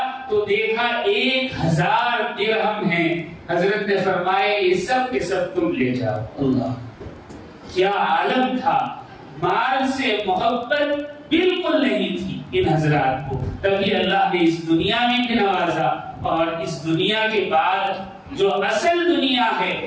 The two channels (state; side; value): identical; both; correlation 1.00